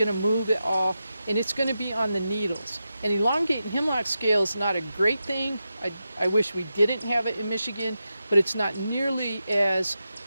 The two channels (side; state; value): both; inverted; correlation -0.89